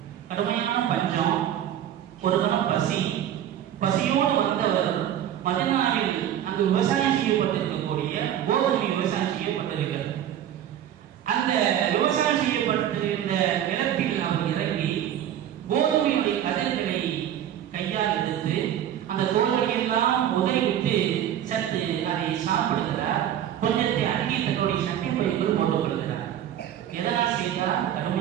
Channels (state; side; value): quieter; left; 10.7 dB